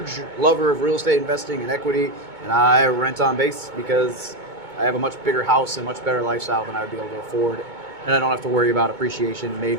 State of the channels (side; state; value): left; late; 2.2 ms